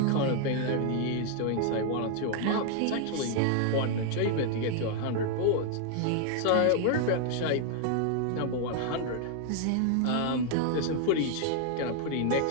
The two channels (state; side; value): different; both; correlation 0.00